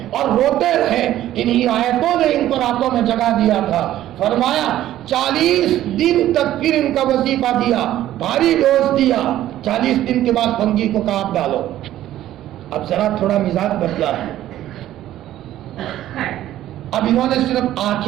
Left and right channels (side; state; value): left; quieter; 13.2 dB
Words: اور روتے رہے. انہی آیتوں نے ان کو راتوں میں جگا دیا تھا. فرمایا 40 دن تک پھر ان کا وظیفہ دیا, بھاری ڈوز دیا. 40 دن کے بعد بھنگی کو کہا آپ ڈالو. اب ذرا تھوڑا مزاج بدلا ہے. اب انہوں نے صرف